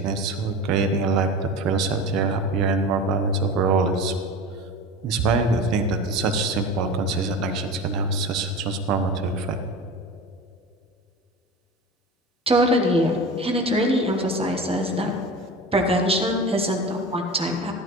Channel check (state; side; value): normal; both; correlation 0.31